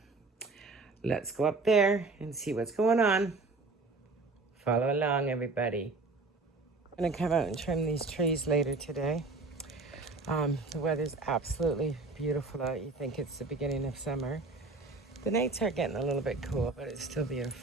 let's go up there and see what's going on. Follow along, everybody. I'm going to come out and trim these trees later today. The weather's absolutely beautiful out. You think it's the beginning of summer. The nights are getting a little bit cool, but it's still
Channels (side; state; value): left; quieter; 3.6 dB